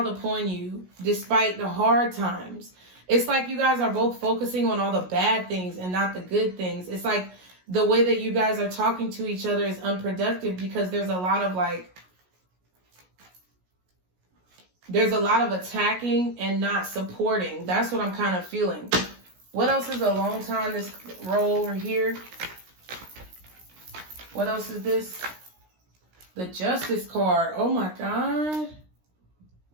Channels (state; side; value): late; left; 16 ms